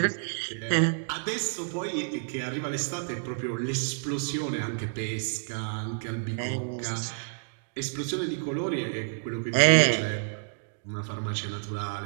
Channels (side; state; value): left; silent; digital silence